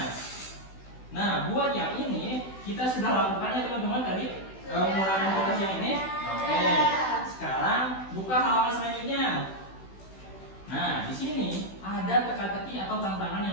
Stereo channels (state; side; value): late; right; 16 ms